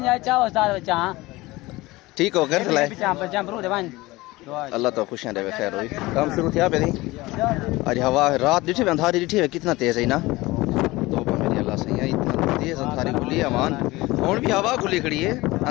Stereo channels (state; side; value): quieter; right; 20.3 dB